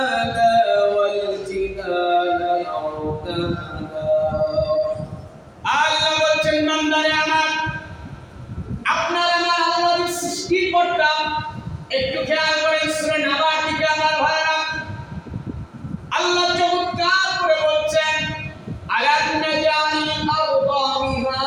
ওয়াল জিবালা আওতাদা। আল্লাহ বলছেন বান্দারে আমার, আপনার আমার আল্লাহর সৃষ্টিকর্তা। একটু খেয়াল করেন সূরা নাবা থেকে আমার ভাইরা আল্লাহ চমৎকার করে বলছেন আলাম নাজআলিল আরদা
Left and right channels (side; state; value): both; identical; correlation 1.00